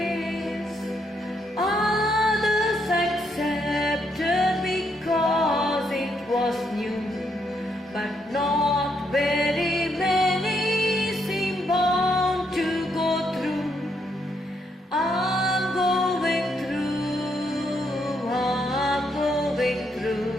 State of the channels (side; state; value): both; normal; correlation 0.76